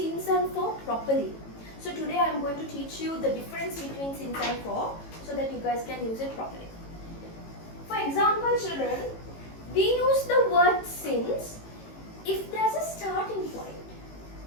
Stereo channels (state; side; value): late; right; 18 ms